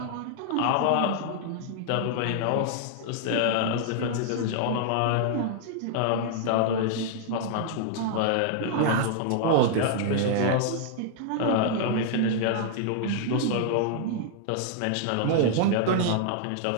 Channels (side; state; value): both; different; correlation -0.01